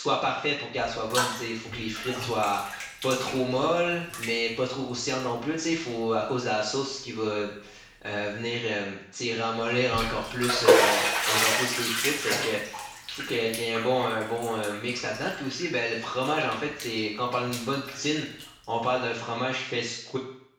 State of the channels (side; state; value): both; identical; correlation 1.00